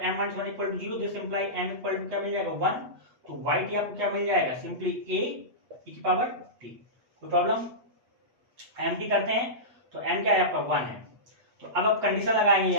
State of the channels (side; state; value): left; late; 8.1 ms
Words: minus 1 equal to 0, this imply m equal to क्या मिल जाएगा, 1। तो y t आपको क्या मिल जाएगा, सिंपली a e की पावर t। कोई प्रॉब्लम, m t करते हैं तो m क्या है आपका 1 है। तो अब आप कंडीशन लगाएंगे